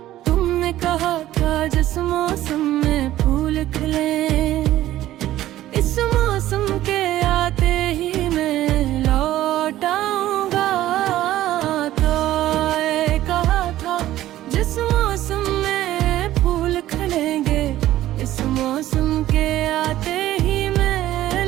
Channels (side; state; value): left; quieter; 14.1 dB